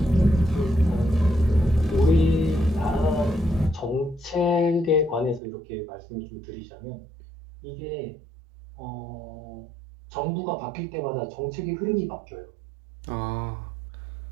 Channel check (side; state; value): left; drops out; at 5.4 s